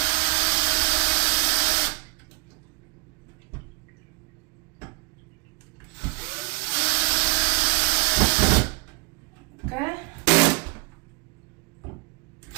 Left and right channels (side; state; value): left; quieter; 29.3 dB